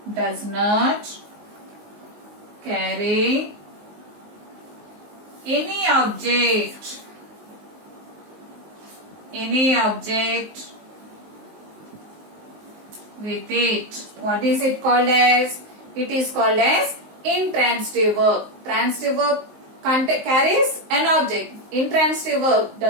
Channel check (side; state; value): left; late; 19 ms